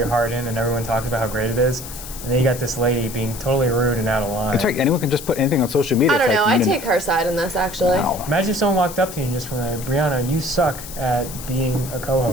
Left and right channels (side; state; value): left; noise; hiss, 12 dB below the sound